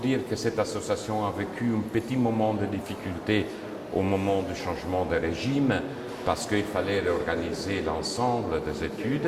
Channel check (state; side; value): identical; both; correlation 1.00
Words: que cette association a vécu un petit moment de difficulté au moment du changement de régime parce qu'il fallait réorganiser l'ensemble des